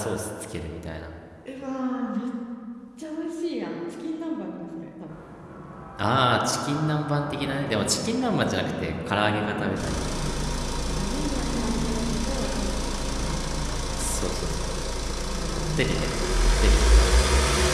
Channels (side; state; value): both; identical; correlation 1.00